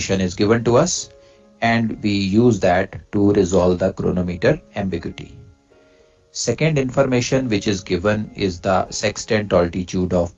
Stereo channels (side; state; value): both; identical; correlation 1.00